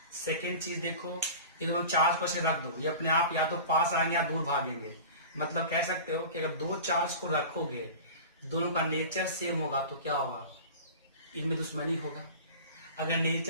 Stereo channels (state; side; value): inverted; both; correlation -0.36